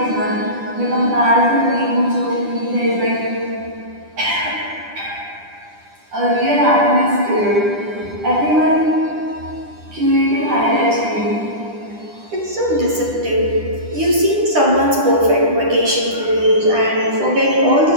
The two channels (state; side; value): late; left; 10 ms